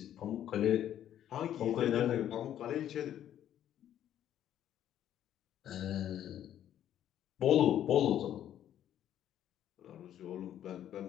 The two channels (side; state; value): right; quieter; 11.0 dB